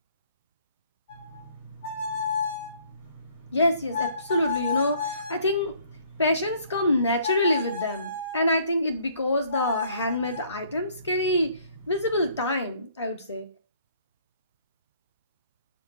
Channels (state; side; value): inverted; both; correlation -0.61